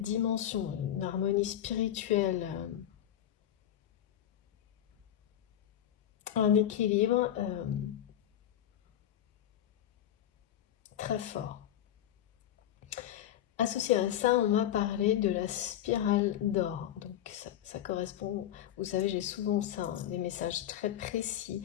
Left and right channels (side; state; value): right; quieter; 11.3 dB